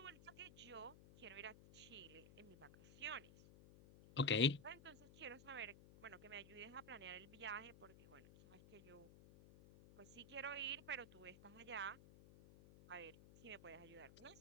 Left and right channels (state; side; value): noise; left; hum, 18 dB below the sound